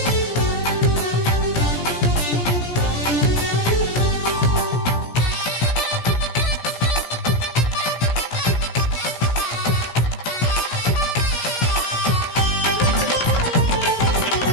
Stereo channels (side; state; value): right; late; 17 ms